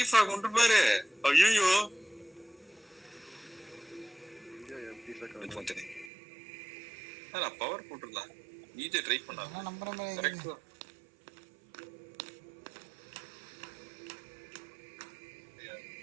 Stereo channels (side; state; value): left; drops out; at 6.1 s